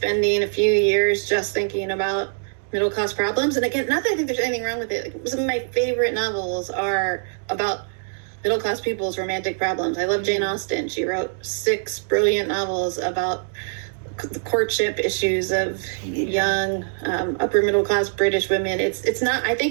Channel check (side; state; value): left; silent; digital silence